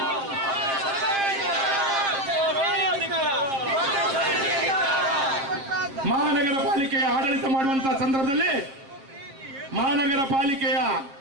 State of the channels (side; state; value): left; late; 7.5 ms